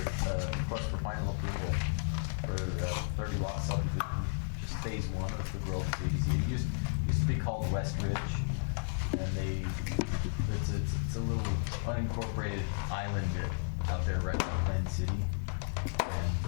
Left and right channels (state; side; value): silent; right; digital silence